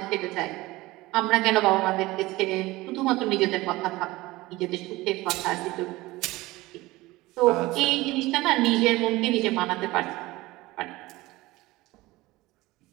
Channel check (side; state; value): left; quieter; 19.7 dB